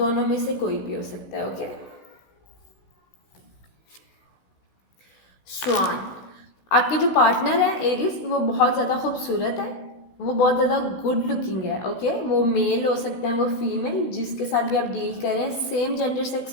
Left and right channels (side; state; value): right; late; 16 ms